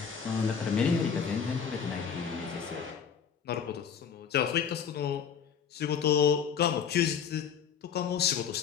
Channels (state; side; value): quieter; right; 7.2 dB